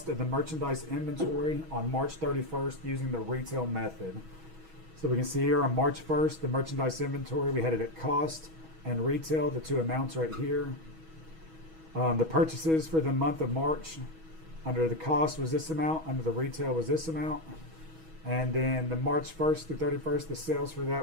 of the merchandise inventory on March 31st using the retail method. So we can see here on March 1st, the merchandise inventory, we had it at cost and retail, the two amounts right here. The purchases for the month of March, under the cost was this amount, under the retail was this amount. And then the March 1st through 31st, the sales for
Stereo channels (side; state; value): left; late; 6.2 ms